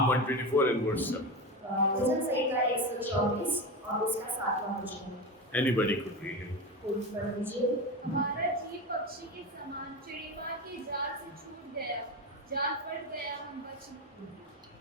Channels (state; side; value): normal; both; correlation 0.22